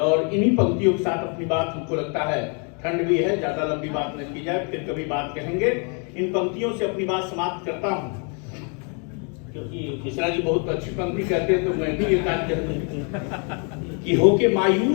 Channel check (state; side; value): quieter; right; 37.7 dB